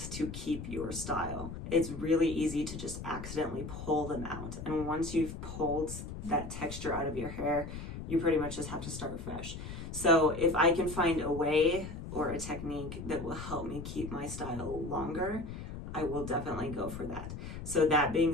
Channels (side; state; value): left; noise; rumble, 9 dB below the sound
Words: to keep your style. It's really easy to just accidentally pull them out. And once you've pulled that texture out of your hair, you pretty much just have to start fresh. So if I can find a way or a technique that will help me keep my style longer, I will definitely go for that. So that being